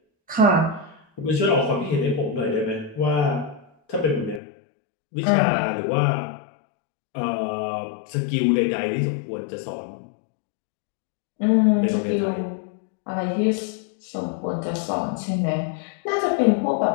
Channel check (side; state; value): right; drops out; at 4.4 s